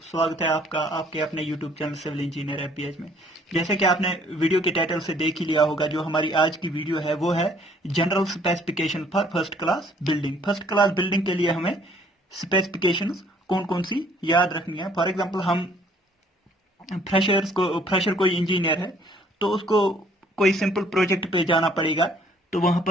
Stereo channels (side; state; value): both; normal; correlation 0.61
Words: स्वागत है आपका आपके अपने यूट्यूब चैनल सिविल इंजीनियर एफबीएच में। जैसे कि आपने वीडियो के टाइटल से देख ही लिया होगा, जो हमारी आज की वीडियो है वो है general specification for first class building. First class building के लिए हमें स्पेसिफिकेशंस कौन कौन सी याद रखनी है। फॉर एग्जाम्पल, हम फ्रेशर कोई इंजीनियर है तो उसको कोई सिंपल प्रोजेक्ट पे जाना पड़ेगा, तो वहां